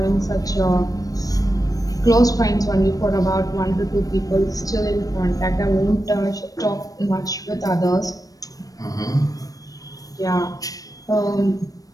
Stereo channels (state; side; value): late; right; 0.18 ms